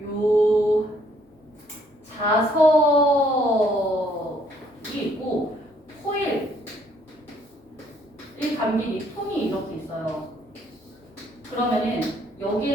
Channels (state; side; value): normal; both; correlation 0.66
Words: 요 자석이 있고 코일 이 감긴 이 통이 이렇게 있어요. 그러면은